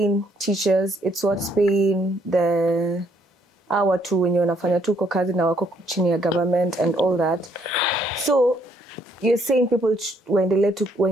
teachers, it's what's paying the hour tu wenye wanafanya tu kwa kazi na wako chini ya government and all that. So you're saying people waendelee tu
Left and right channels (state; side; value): normal; both; correlation 0.69